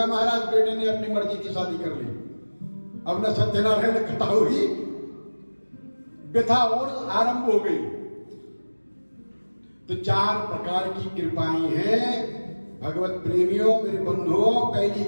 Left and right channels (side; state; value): both; inverted; correlation -1.00